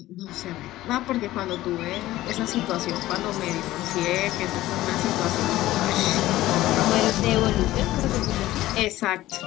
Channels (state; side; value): quieter; right; 15.9 dB